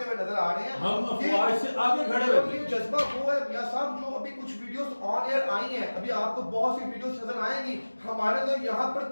ہوئے نظر آ رہے ہیں. ہم افواج سے آگے کھڑے ہوئے. یہ جذبہ وہ ہے میاں صاحب جو ابھی کچھ ویڈیوز آن ایئر آئی ہیں، ابھی آپ کو بہت سی ویڈیوز نظر آئیں گی. ہمارے تو یہاں پر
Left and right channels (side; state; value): both; inverted; correlation -1.00